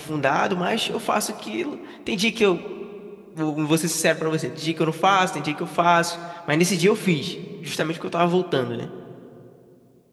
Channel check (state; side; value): identical; both; correlation 1.00